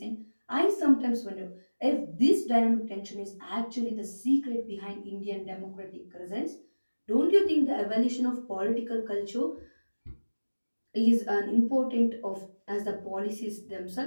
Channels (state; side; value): inverted; both; correlation -1.00